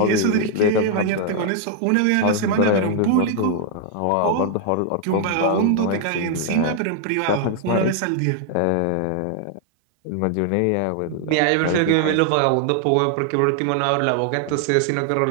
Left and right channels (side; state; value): both; different; correlation 0.00